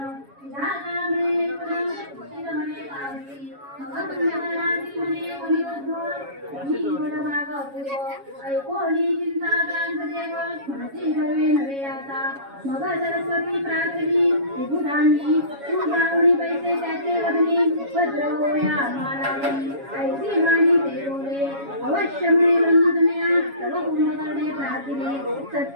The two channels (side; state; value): left; late; 7.2 ms